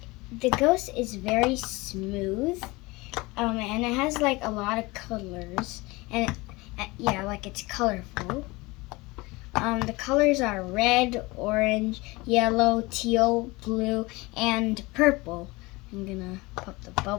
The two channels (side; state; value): right; quieter; 23.0 dB